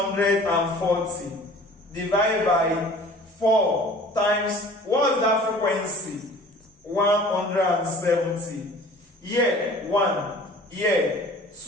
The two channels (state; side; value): normal; both; correlation 0.47